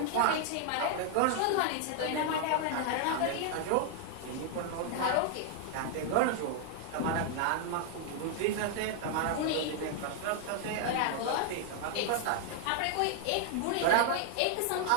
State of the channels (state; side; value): different; both; correlation 0.00